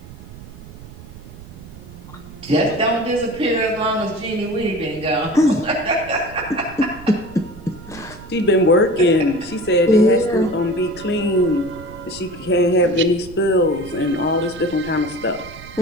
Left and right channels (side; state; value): right; noise; rumble, 17 dB below the sound